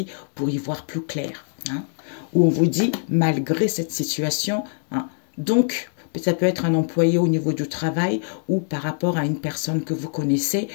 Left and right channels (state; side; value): silent; right; 63 dB below the other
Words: pour y voir plus clair. Hein. Où on vous dit, malgré cette situation, hein, donc, ça peut être un employé au niveau du travail ou par rapport à une personne que vous connaissez